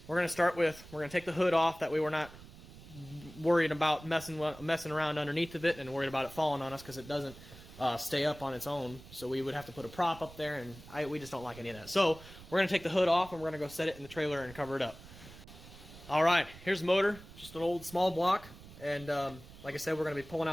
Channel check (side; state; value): right; noise; rumble, 18 dB below the sound